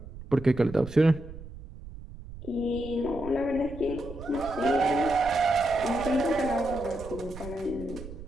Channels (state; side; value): noise; right; rumble, 13 dB below the sound